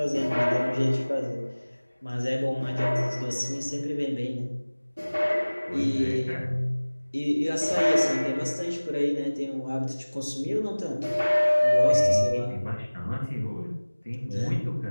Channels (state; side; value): inverted; both; correlation -1.00